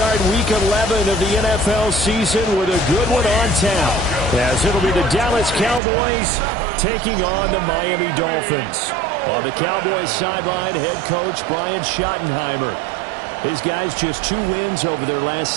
Week 11 of the NFL season with a good one on tap, as it'll be the Dallas Cowboys taking on the Miami Dolphins. On the Cowboys sideline, head coach Brian Schottenheimer. His guys just 2 wins over their last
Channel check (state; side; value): drops out; left; at 5.8 s